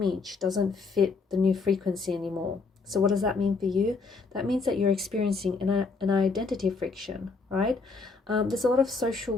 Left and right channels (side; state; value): right; quieter; 4.3 dB